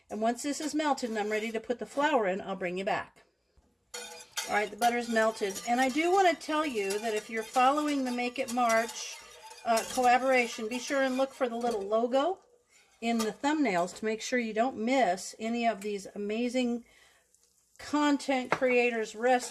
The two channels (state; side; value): identical; both; correlation 1.00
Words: And once this is melted and I'm ready to put the flour in, I'll bring you back. All right, the butter's melted. And I do want to tell you that if you're following the Make It March collaboration, be sure and look for the little logo in the thumbnails to make sure you don't miss any of these amazing content creators'